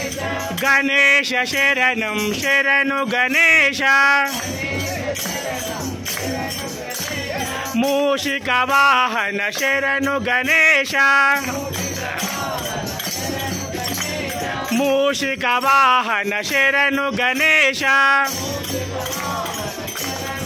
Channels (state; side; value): identical; both; correlation 1.00